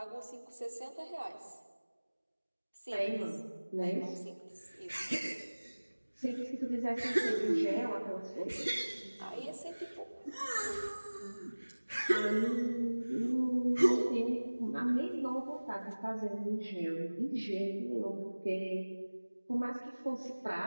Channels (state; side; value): inverted; both; correlation -1.00